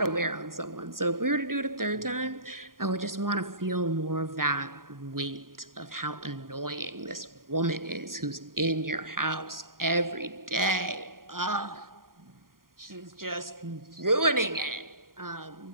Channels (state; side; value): late; left; 0.91 ms